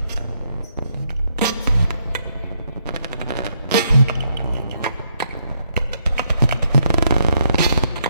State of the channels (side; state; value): both; inverted; correlation -0.75